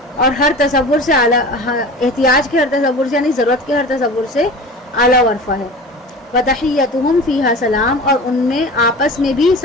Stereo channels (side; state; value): both; normal; correlation 0.35